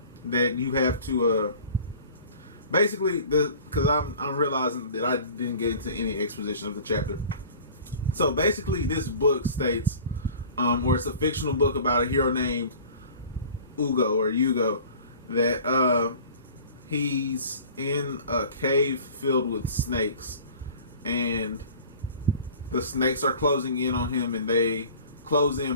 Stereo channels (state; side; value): inverted; both; correlation -0.44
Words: that you have to, basically, because I'm realizing that I didn't get into any exposition of the chapter. So basically, this book states, or it's a fictional book about a hero named Hugo, that he's in a cave filled with snakes, and the snakes are closing in on him, and they close